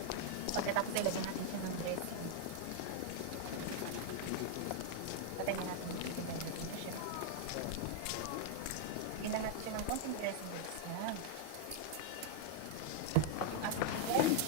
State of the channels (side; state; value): both; different; correlation 0.00